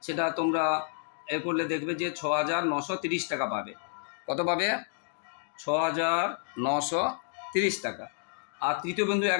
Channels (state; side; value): silent; right; digital silence